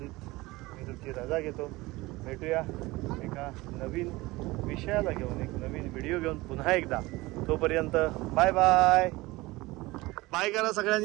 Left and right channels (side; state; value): left; quieter; 20.8 dB